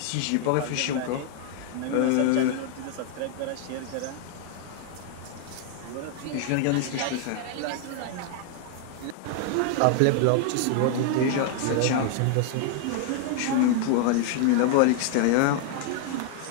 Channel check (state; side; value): different; both; correlation 0.00